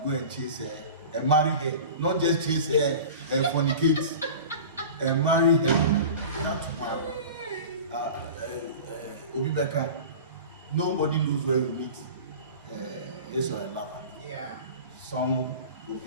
go and chase her and marry her, not just chase her and fornicate, and marry her. That's one. Nobody knows where you meet this or a lover. Yeah. Some will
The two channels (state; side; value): inverted; both; correlation -0.36